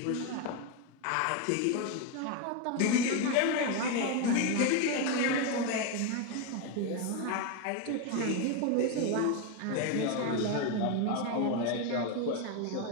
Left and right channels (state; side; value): different; both; correlation 0.02